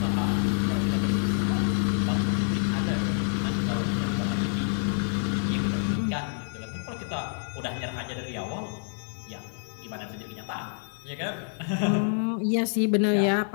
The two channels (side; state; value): right; silent; digital silence